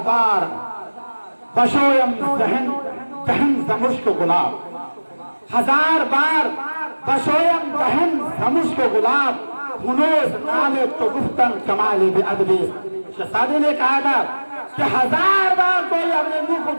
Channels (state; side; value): inverted; both; correlation -1.00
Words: بار بشویم دہن زمشک گلاب، ہزار بار بشویم دہن زمشک گلاب، ہنوز نامے تو گفتن کمالی بے ادبی۔ شہزادی نے کہا تھا کہ ہزار بار کوئی اپنے منہ کو